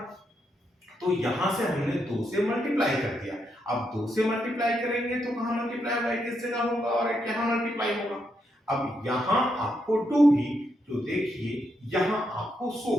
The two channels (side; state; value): both; normal; correlation 0.80